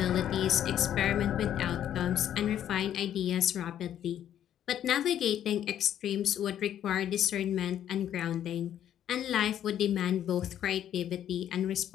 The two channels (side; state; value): right; quieter; 10.6 dB